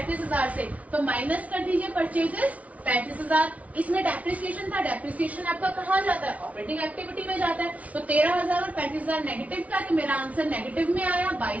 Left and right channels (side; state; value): left; late; 0.068 ms